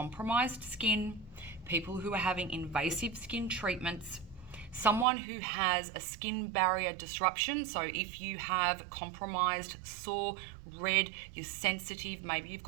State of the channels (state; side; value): drops out; left; at 5.1 s